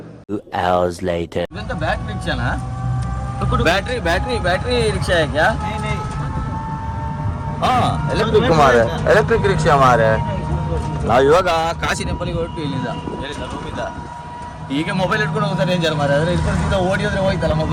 2 hours later. ಇದಂತ ಬ್ಯಾಟ್ರಿ ರಿಕ್ಷಾನಾ? ಬ್ಯಾಟ್ರಿ ರಿಕ್ಷಾ है क्या? हाँ, ಎಲೆಕ್ಟ್ರಿಕ್ ರಿಕ್ಷಾ ಮಾರೆ. ನಾವು ಇವಾಗ ಕಾಶಿ ಟೆಂಪಲ್ಗೆ ಹೊರಟು ಇಲ್ಲಿಂದ ರೂಮಿಂದ. ಈಗ ಮೊಬೈಲ್ ಇಟ್ಕೊಂಡು ಹೋಗ್ತಾರೆ ಡೇಂಜರ್ ಮಾರೆ. ಅದ್ರ ಇಟ್ಕೊಂಡು ಸೀದಾ ಓಡಿ ಹೋದ್ರೆ ಹೋಯ್ತಲ್ಲ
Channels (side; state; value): both; identical; correlation 1.00